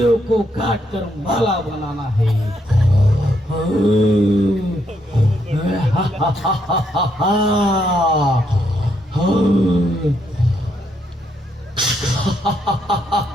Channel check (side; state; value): both; normal; correlation 0.76